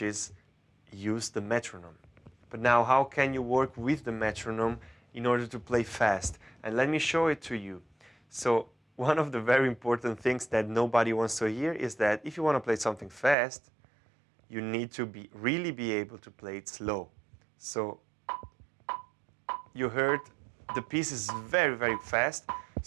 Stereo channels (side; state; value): left; drops out; at 13.4 s